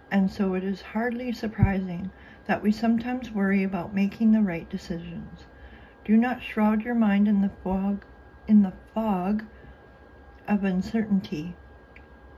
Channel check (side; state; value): both; identical; correlation 1.00